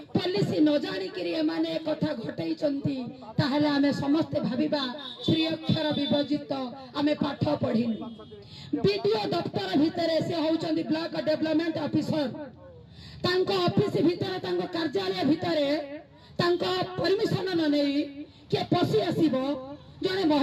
पुलिस न जानी करी माने कथा घटई चंती ताहले आमे समस्त भाबिबा श्री अक्षर विभजित आमे पाठ पढिनु वीडियो दफ्तर भितरे से होचंती ब्लॉक डेवलपमेंट ऑफिसर तांको ऑफिस भितरे तांको कार्यालय भितरे तांको परमिशन न नेई के पसी आसीबो जने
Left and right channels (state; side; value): identical; both; correlation 1.00